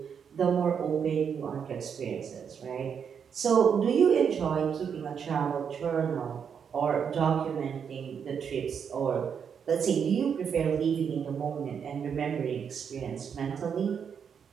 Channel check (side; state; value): left; quieter; 7.2 dB